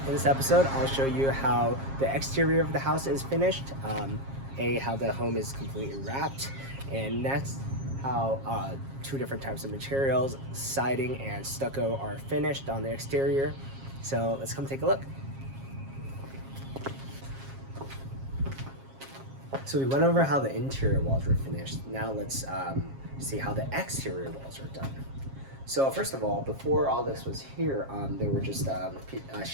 In this episode, I'll show you how the exterior of the house is finished, how the home is completely wrapped, and next, how two different types of materials, siding and stucco, are finished on the exterior. So let's come take a look. So we went over how the interior walls were finished. Now let's see how the exterior walls are done. So first of all, before all this was here, there were just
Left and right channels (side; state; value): left; late; 7.4 ms